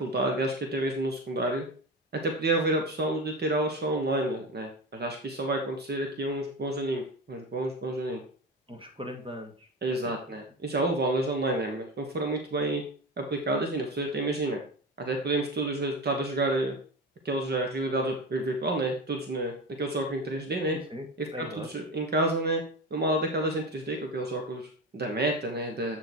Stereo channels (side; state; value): both; normal; correlation 0.24